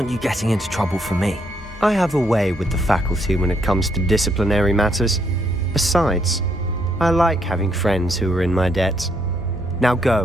you getting into trouble for me. I have a way with the faculty when it comes to disciplinary matters. Besides, I like having friends who are in my debt. Now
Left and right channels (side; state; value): both; normal; correlation 0.73